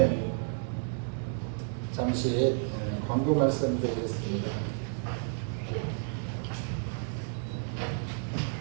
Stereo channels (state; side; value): silent; left; 57 dB below the other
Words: 잠시 광고 말씀 드리겠습니다.